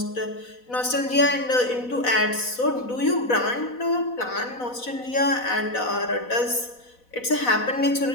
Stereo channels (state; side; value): late; right; 4.1 ms